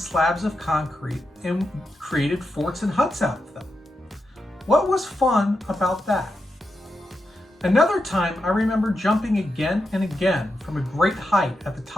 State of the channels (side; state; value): both; normal; correlation 0.87